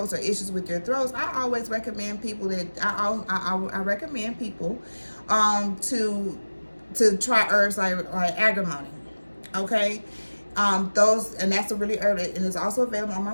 or issues with your throats, I always recommend people that I recommend people to try herbs like agrimony. Okay, those, and that's a really herb, and it's also available on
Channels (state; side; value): inverted; both; correlation -1.00